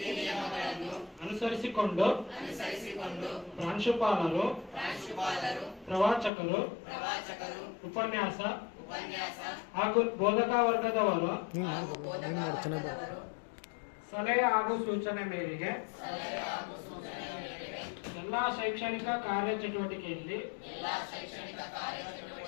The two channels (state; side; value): drops out; right; at 6.3 s